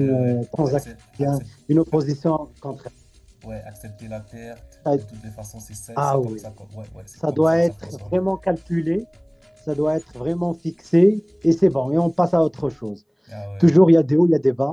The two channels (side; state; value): both; identical; correlation 1.00